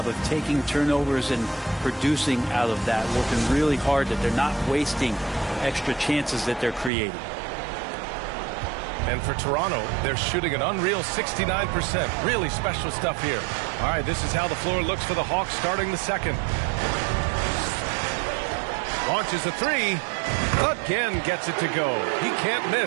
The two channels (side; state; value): left; drops out; at 6.9 s